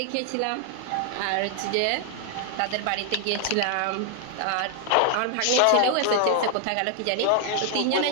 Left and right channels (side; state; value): both; different; correlation 0.00